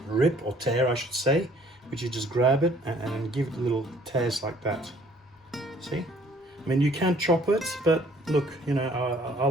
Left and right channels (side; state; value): both; normal; correlation 0.59